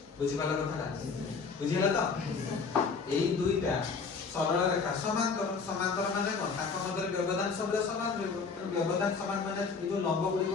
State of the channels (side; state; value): right; quieter; 4.9 dB